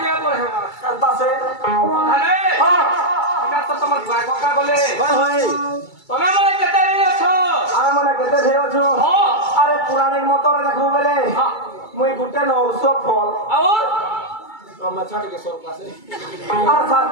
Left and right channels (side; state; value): right; late; 2.3 ms